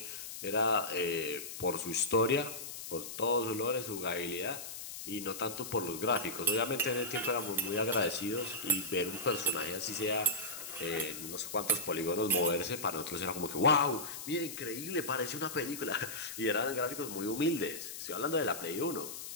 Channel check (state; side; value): noise; left; hiss, 9 dB below the sound